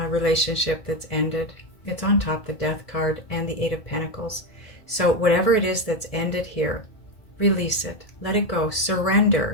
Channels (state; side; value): late; right; 1.7 ms